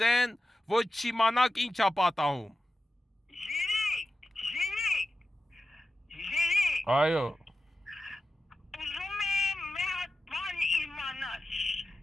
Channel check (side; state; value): both; normal; correlation 0.93